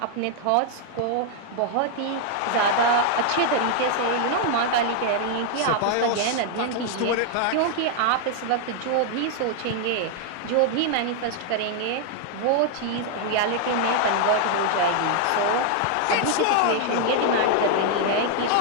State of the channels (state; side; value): different; both; correlation 0.00